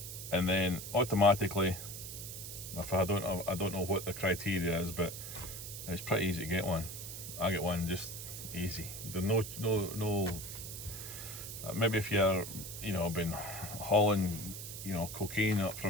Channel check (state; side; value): noise; right; hiss, 9 dB below the sound